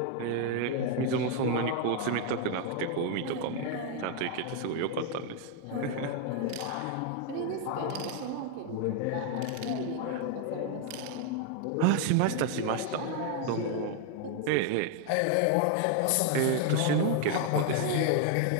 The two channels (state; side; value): different; both; correlation 0.00